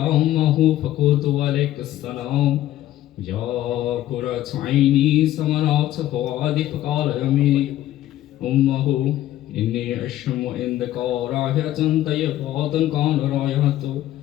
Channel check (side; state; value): right; quieter; 13.7 dB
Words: أمه فقلت عليك السلام يا قرة عيني ثمرات فؤادي فقال يميني أمه إني أشم عندك رائحة طيبة كان رائحة